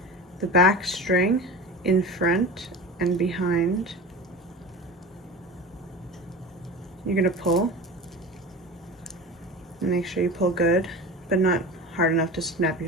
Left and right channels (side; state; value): both; normal; correlation 0.31